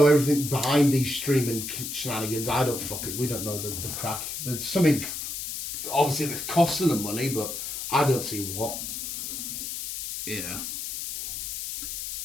everything behind these streaming shenanigans. We don't know the crack. There's something, obviously, that's costing them money, but I don't see what. Yeah.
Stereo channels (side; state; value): left; noise; hiss, 5 dB below the sound